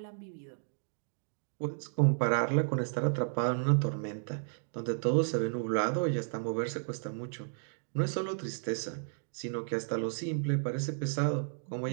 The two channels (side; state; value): left; silent; digital silence